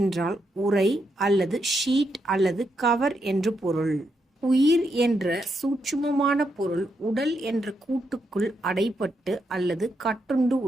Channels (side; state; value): both; normal; correlation 0.81